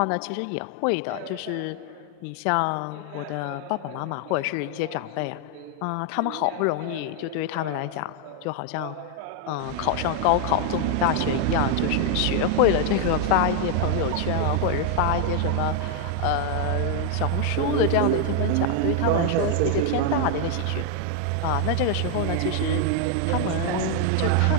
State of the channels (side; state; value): both; different; correlation 0.00